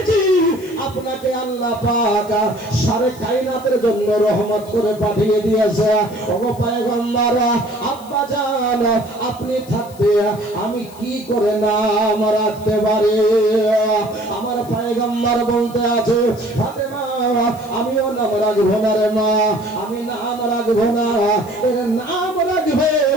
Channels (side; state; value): left; noise; hiss, 22 dB below the sound